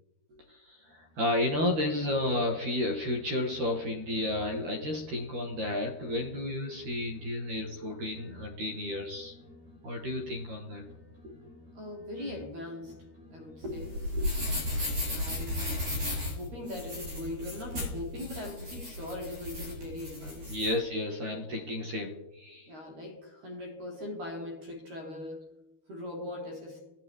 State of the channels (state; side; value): late; left; 13 ms